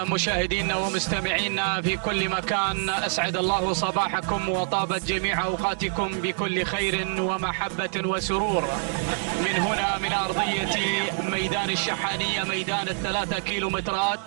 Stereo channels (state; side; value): silent; left; digital silence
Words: مشاهدينا ومستمعينا في كل مكان، أسعد الله صباحكم وطابت جميع أوقاتكم بكل خير ومحبة وسرور. من هنا من أرضية ميدان الشحانية، ميدان ال3